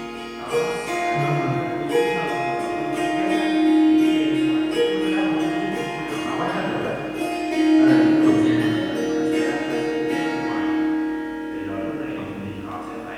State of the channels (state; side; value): identical; both; correlation 1.00